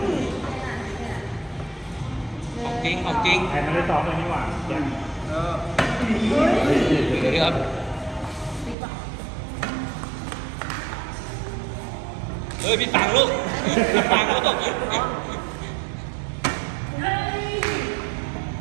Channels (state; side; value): drops out; left; at 8.8 s